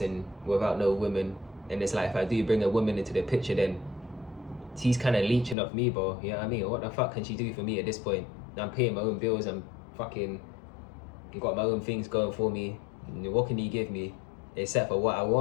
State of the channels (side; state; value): right; drops out; at 5.6 s